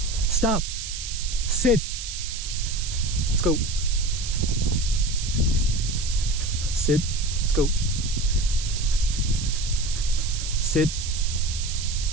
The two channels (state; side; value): noise; right; hiss, 7 dB below the sound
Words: Stop. Sit. Let's go. Sit. Let's go. Sit.